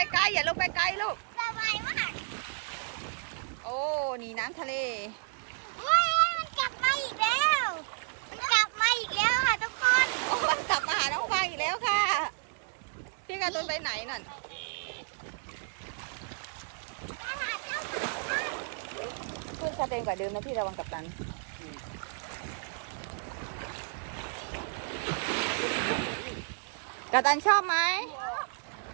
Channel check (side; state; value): left; silent; 57 dB below the other